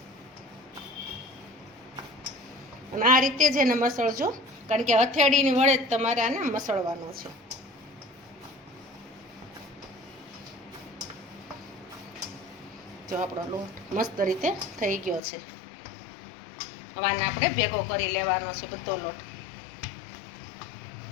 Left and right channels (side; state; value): right; drops out; at 15.2 s